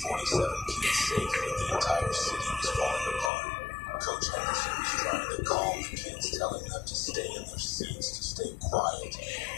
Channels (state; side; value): drops out; right; at 3.3 s